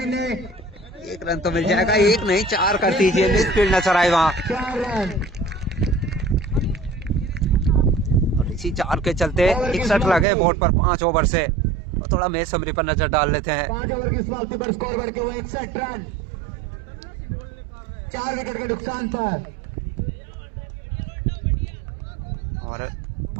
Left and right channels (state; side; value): drops out; left; at 10.2 s